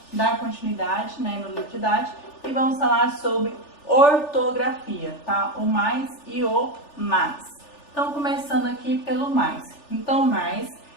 dar continuidade, né, no livro didático e vamos falar sobre ortografia, tá? O mais e o mas. Então começando aqui pelo mais. Então mais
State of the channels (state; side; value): late; right; 3.4 ms